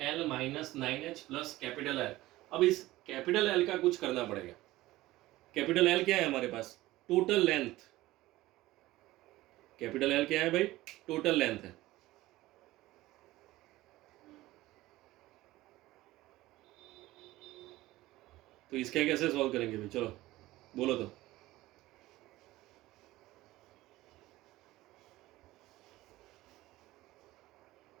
minus 9H plus capital L। अब इस कैपिटल L का कुछ करना पड़ेगा। कैपिटल L क्या है हमारे पास? Total length. कैपिटल L क्या है भाई? टोटल लेंथ है। तो इसका कैसे सॉल्व करेंगे भाई? चलो बोलो तो।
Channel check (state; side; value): quieter; left; 17.5 dB